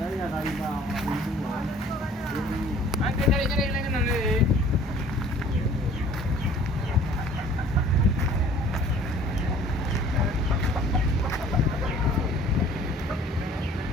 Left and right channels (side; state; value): both; normal; correlation 0.52